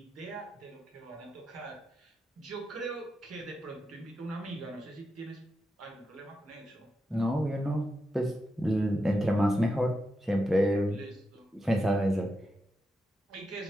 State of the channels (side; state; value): both; normal; correlation 0.87